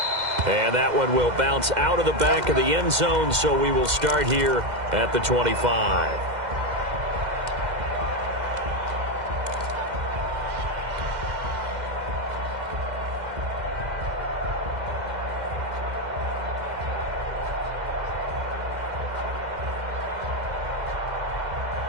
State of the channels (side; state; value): left; late; 2.1 ms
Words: And that one will bounce out of the back of the end zone, so we will start here at the 25.